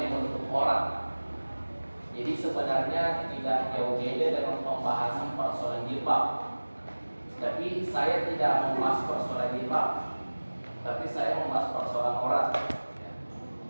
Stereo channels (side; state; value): both; inverted; correlation -1.00